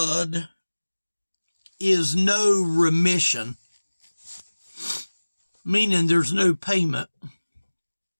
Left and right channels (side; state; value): both; inverted; correlation -1.00